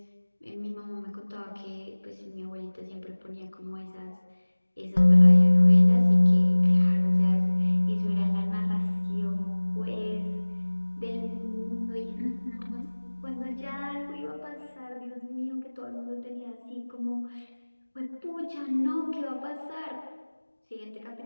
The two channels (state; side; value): inverted; both; correlation -1.00